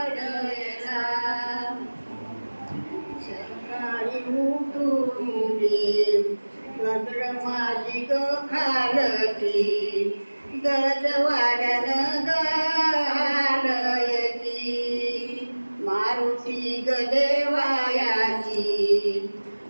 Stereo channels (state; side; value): inverted; both; correlation -1.00